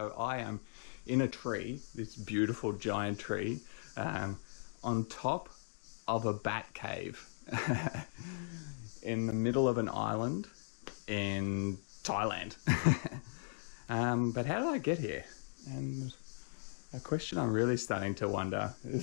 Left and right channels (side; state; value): right; silent; digital silence